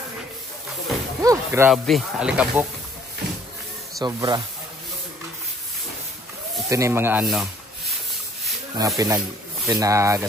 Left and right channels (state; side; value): normal; both; correlation 0.60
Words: Grabe, alikabok. Sobra. Ito na yung mga ano. Mga